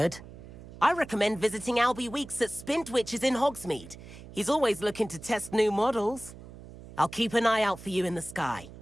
I recommend visiting Albie Weeks at Spintwitches in Hogsmeade. He's always looking to test new models. I'll keep an eye out for you in the sky.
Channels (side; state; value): right; noise; hum, 16 dB below the sound